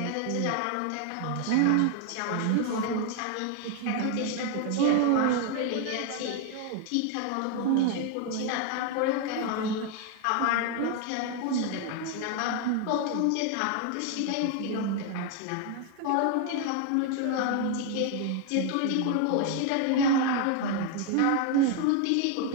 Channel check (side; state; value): both; different; correlation 0.01